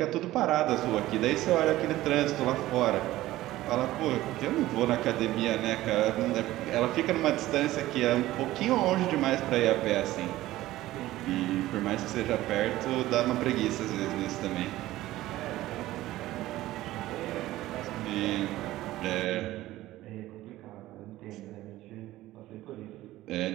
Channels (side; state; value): left; quieter; 16.1 dB